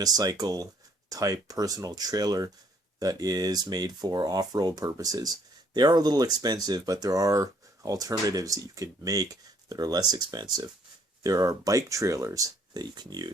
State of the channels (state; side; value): normal; both; correlation 0.64